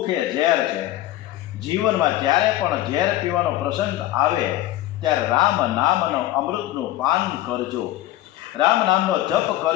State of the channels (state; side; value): quieter; right; 15.0 dB